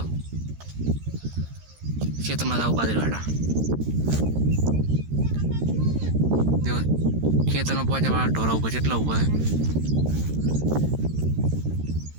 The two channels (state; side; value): late; left; 13 ms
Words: क्षेत्र में जाव बादरीवाड़ा देखो, खेतर में पहुंचा वाला ढोरा उभा चेटला उभा है।